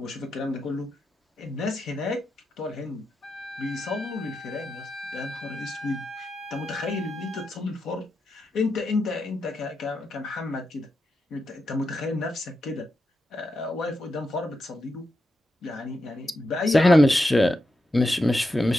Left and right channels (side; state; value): both; normal; correlation 0.87